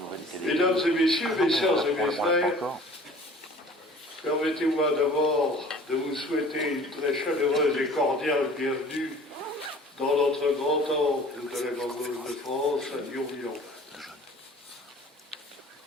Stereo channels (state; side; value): normal; both; correlation 0.48